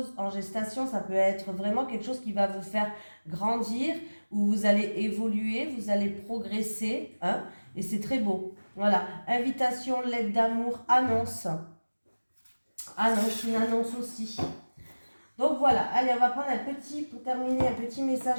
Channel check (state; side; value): inverted; both; correlation -1.00